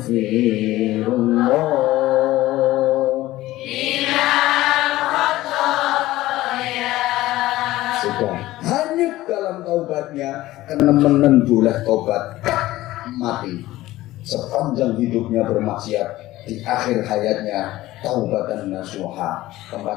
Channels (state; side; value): quieter; right; 16.6 dB